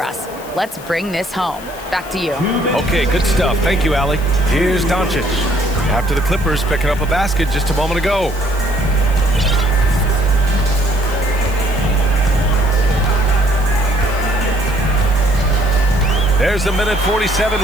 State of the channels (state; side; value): noise; left; hiss, 19 dB below the sound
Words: us. Let's bring this home. Back to you. Okay, good stuff. Thank you, Allie. Here's Doncic. After the Clippers picking up a basket just a moment ago. There's a minute